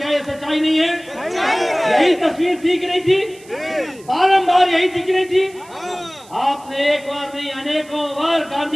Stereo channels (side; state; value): right; noise; hiss, 24 dB below the sound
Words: ये सच्चाई नहीं है? यही तस्वीर थी कि नहीं थी? बारंबार यही थी कि नहीं थी? आपने एक बार नहीं अनेकों बार